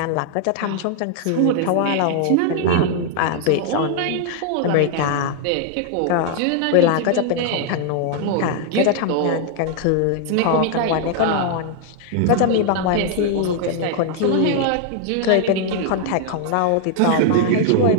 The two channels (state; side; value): different; both; correlation 0.00